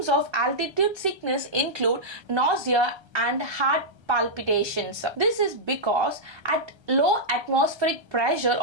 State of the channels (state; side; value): late; left; 1.3 ms